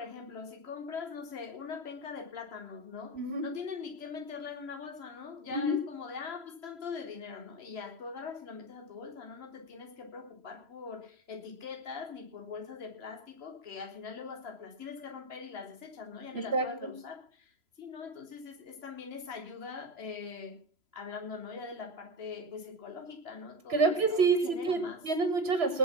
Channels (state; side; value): late; left; 3.0 ms